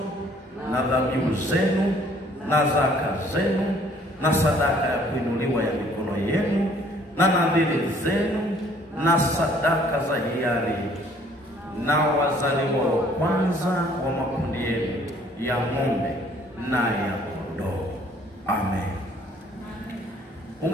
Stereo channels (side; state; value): both; normal; correlation 0.59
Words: na dhabihu zenu na zaka zenu na sadaka ya kuinuliwa ya mikono yenu na nadhiri zenu na sadaka za hiari na wazaliwa wa kwanza wa makundi yenu ya ng'ombe na ya kondoo. Amen.